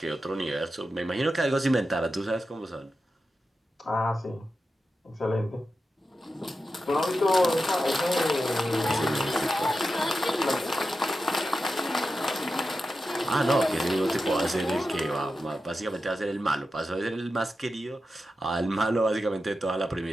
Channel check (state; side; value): normal; both; correlation 0.90